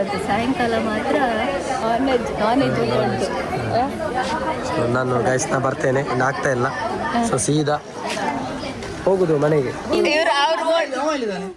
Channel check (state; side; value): identical; both; correlation 1.00